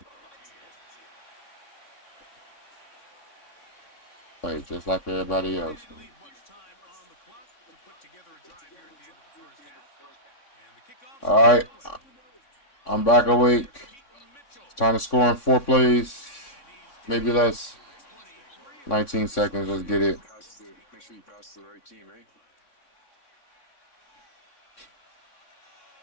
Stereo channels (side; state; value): right; late; 3.6 ms